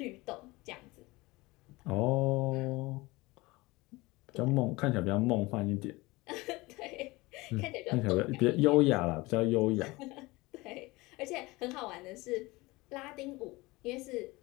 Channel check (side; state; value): right; quieter; 22.1 dB